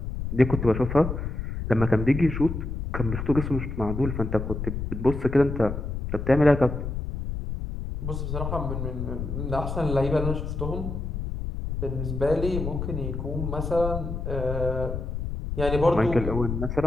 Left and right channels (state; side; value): noise; left; rumble, 4 dB below the sound